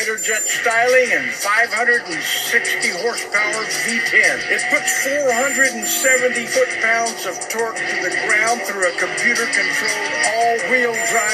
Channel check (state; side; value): identical; both; correlation 1.00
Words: jet styling and 560 horsepower V10. It puts 470 foot-pounds of torque to the ground through a computer-controlled all-wheel